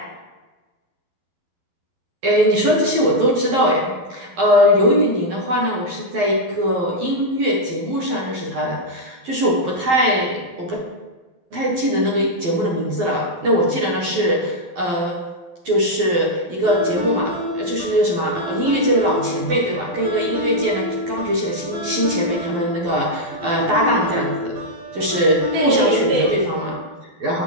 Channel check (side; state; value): left; late; 12 ms